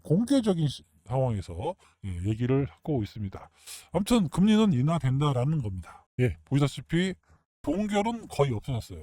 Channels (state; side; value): identical; both; correlation 1.00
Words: 공개적인 상황에서 얘기를 하고 있습니다. 아무튼 금리는 인하된다라는 겁니다. 보시다시피 동결은 거의